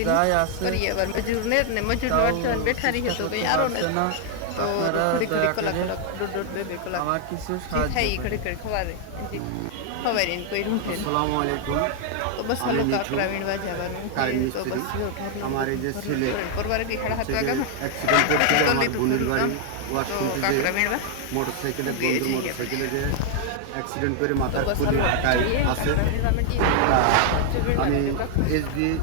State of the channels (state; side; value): different; both; correlation 0.00